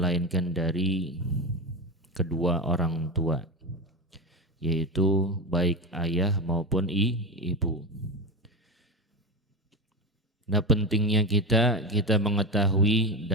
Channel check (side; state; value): both; normal; correlation 0.20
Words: dari kedua orang tua, yaitu baik ayah maupun ibu. Nah, pentingnya kita mengetahui